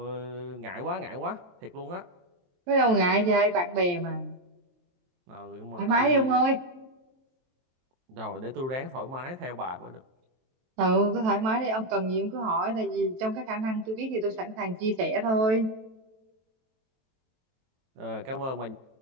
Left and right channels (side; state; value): left; late; 23 ms